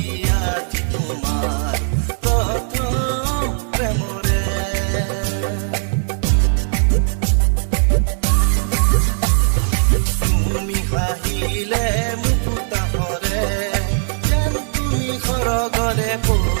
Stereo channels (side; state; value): left; silent; 58 dB below the other